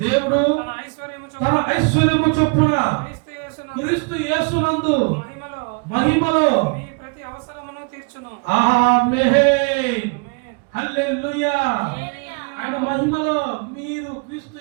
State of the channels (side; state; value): left; quieter; 33.9 dB